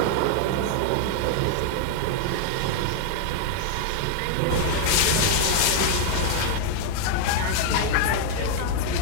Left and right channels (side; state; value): both; different; correlation 0.00